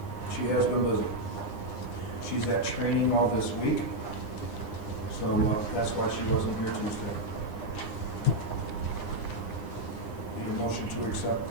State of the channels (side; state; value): right; late; 9.8 ms